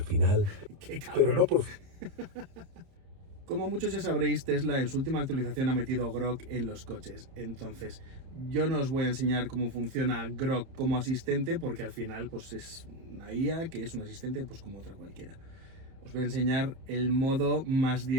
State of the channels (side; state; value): left; late; 31 ms